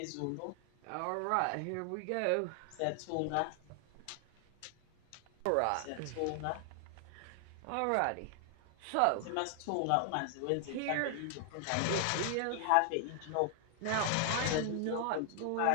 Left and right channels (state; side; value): different; both; correlation 0.00